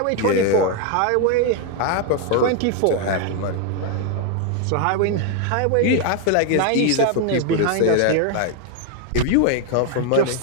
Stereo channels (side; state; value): both; different; correlation 0.00